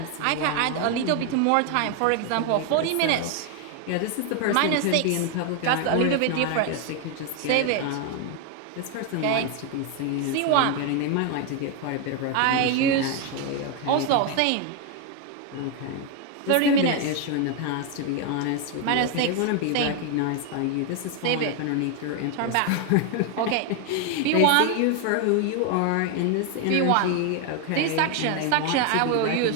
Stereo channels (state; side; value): different; both; correlation 0.01